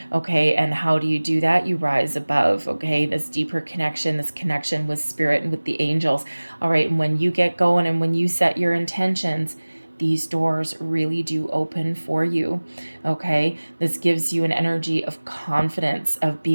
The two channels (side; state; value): both; inverted; correlation -1.00